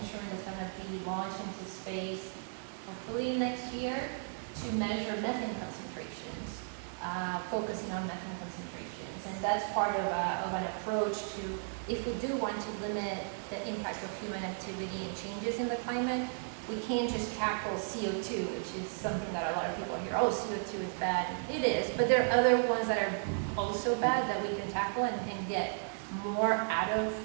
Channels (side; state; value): left; silent; digital silence